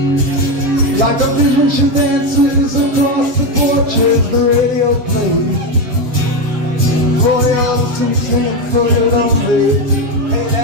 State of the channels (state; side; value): late; left; 8.2 ms